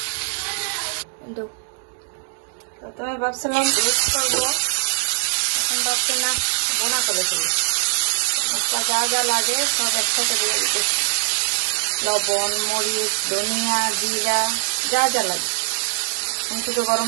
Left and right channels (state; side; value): silent; left; digital silence